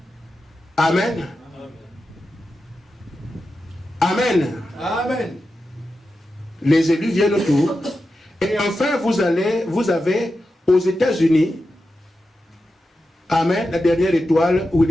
Amen. Amen. Amen. Les élus viennent autour. Et enfin, vous avez aux États-Unis, Amen, la dernière étoile,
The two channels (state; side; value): normal; both; correlation 0.90